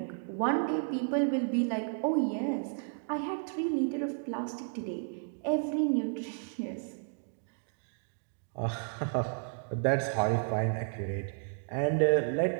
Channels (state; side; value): silent; left; 56 dB below the other